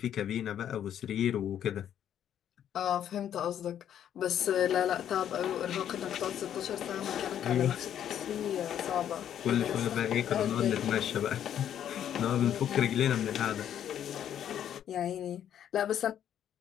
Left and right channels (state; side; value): quieter; right; 10.0 dB